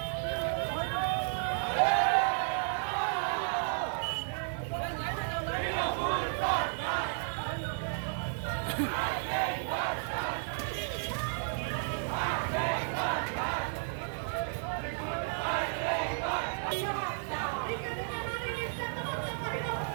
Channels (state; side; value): silent; left; digital silence